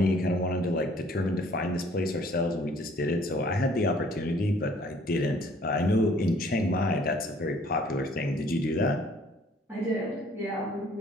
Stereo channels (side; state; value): both; normal; correlation 0.58